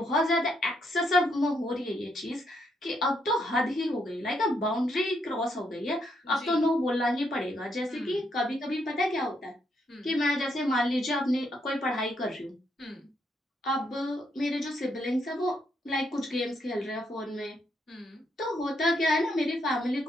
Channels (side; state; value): both; normal; correlation 0.76